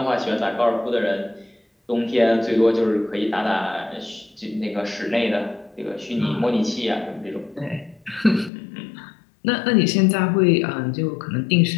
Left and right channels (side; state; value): right; drops out; at 8.5 s